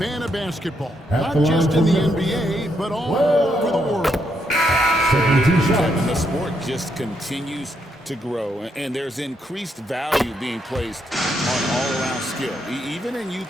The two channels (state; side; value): normal; both; correlation 0.78